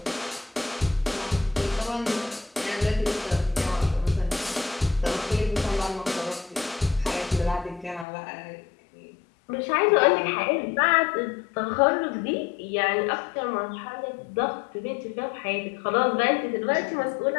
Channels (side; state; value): right; drops out; at 8.1 s